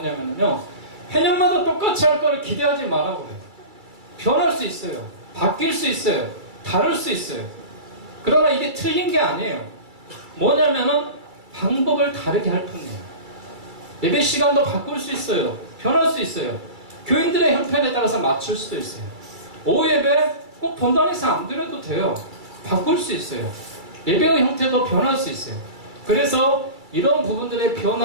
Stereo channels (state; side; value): late; left; 2.3 ms